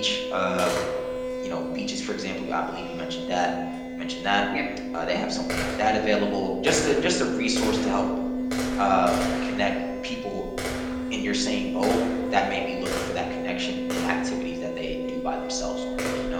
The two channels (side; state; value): both; identical; correlation 1.00